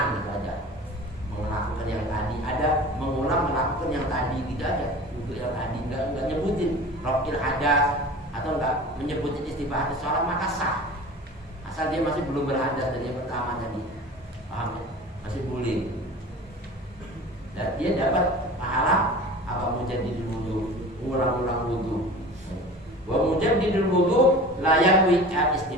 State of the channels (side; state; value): both; normal; correlation 0.38